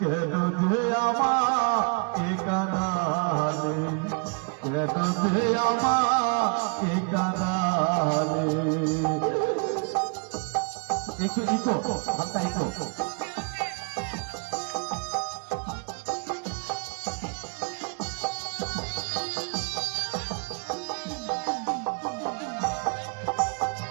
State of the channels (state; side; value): quieter; left; 36.1 dB